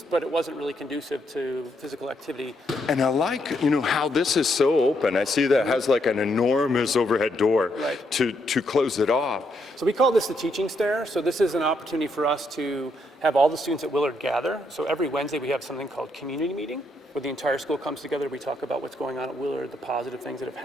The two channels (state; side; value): normal; both; correlation 0.76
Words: but it wasn't really conducive to physical activity. And I like, how this is so open. I see that it has like an enormous overhead door to close it off. So we call this the teaching stair. So this is an opportunity for us to have all the students at Willard gather. So every Wednesday we have something called community meeting, where the entire school comes together. We talk about what's going on at Willard, the positive things that have